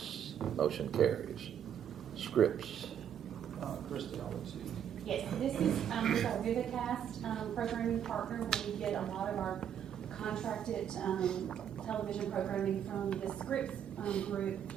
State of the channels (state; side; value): quieter; left; 9.2 dB